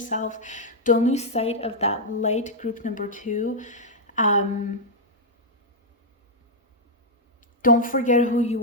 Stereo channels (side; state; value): both; normal; correlation -0.03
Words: Don't lose sight of that light, group number 2. Don't forget who